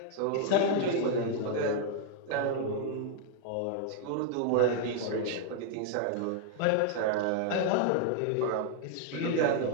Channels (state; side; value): different; both; correlation 0.00